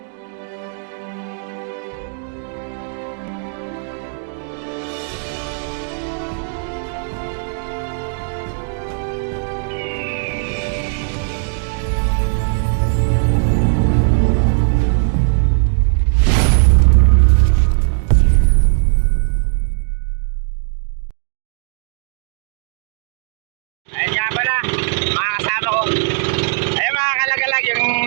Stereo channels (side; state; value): left; silent; 64 dB below the other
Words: Ayun nga pala, mga kasama ko. Ayun mga kalagalag, yung